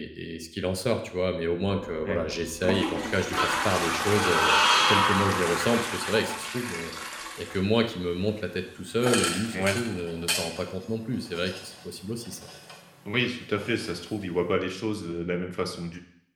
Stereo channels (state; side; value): identical; both; correlation 1.00